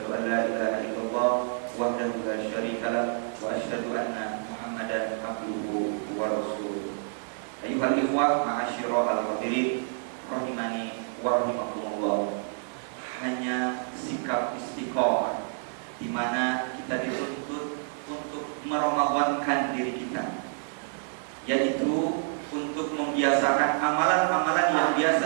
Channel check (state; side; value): silent; left; digital silence